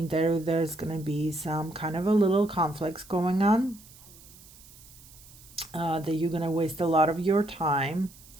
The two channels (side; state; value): right; noise; hiss, 22 dB below the sound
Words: that there's gonna be some kind of a little conflicts going on. That you're gonna waste a lot of your time.